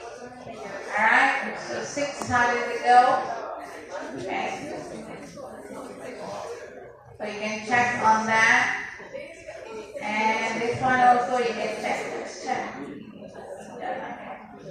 alright? So 6, how did it go? Okay. So you can check on that. And this one also you can check. Let's check.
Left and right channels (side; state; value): both; identical; correlation 1.00